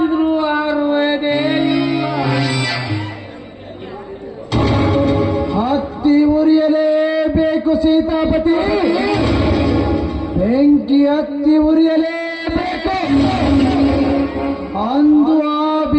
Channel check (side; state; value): both; identical; correlation 1.00